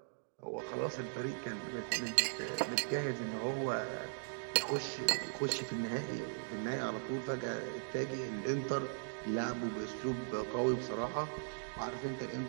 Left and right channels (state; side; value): silent; left; digital silence